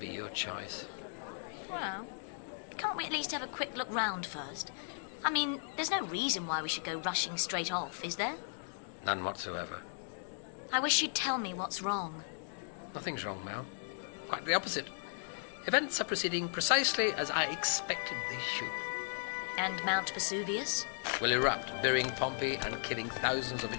be your choice. Well, can't we at least have a quick look round first? I mean, there's no reason why we should go rushing straight off, is there? None whatsoever. I wish you'd tell me what's wrong. Nothing's wrong, Mel. Quite the opposite. Events are proceeding precisely as I expected they should. And Mount Vesuvius? Will erupt, burying Pompeii and killing thousands of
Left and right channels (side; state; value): right; silent; digital silence